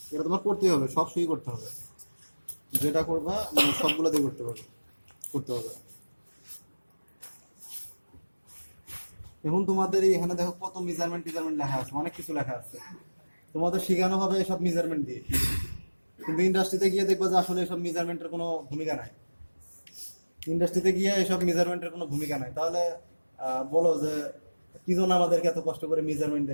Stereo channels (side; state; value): both; inverted; correlation -1.00